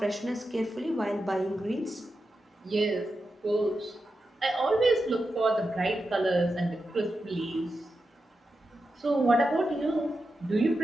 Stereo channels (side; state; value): both; normal; correlation 0.89